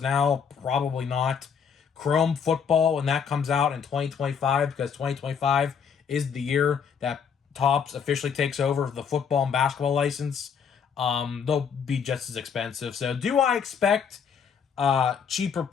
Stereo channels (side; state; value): right; quieter; 6.8 dB